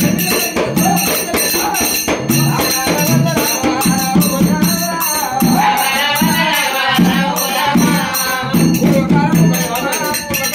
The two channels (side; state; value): both; identical; correlation 1.00